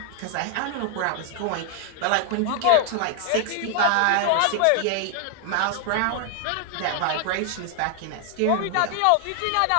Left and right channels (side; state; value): both; different; correlation 0.00